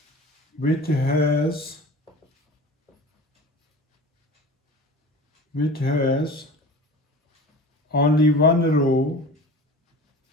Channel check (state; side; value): normal; both; correlation 0.37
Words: which has only one row